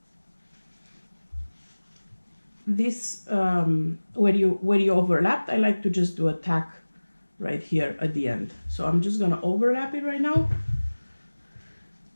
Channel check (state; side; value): inverted; both; correlation -1.00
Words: This where you overlapped, I like to just do a tack right here at the end. So I'm just gonna overlap it right now